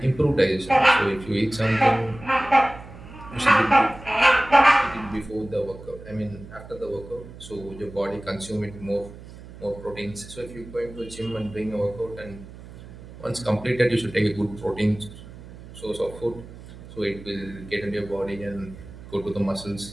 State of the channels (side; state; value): right; noise; hum, 16 dB below the sound